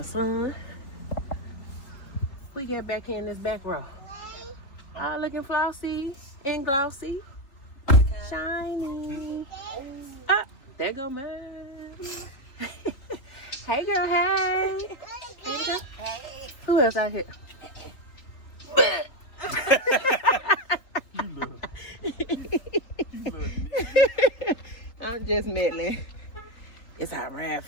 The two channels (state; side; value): late; right; 3.8 ms